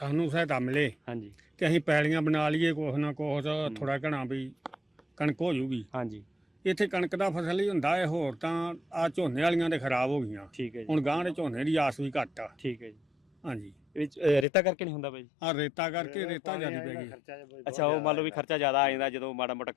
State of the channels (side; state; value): right; drops out; at 14.5 s